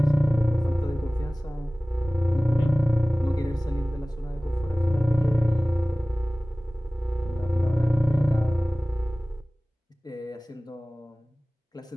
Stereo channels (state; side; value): normal; both; correlation 0.98